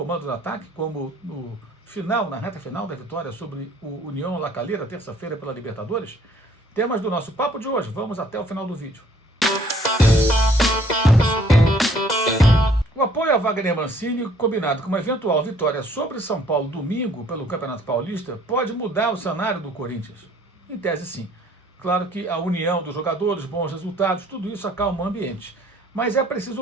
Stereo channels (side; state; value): both; normal; correlation 0.59